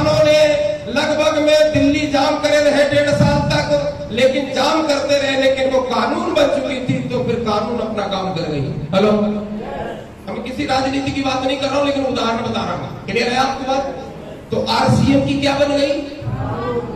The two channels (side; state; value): both; identical; correlation 1.00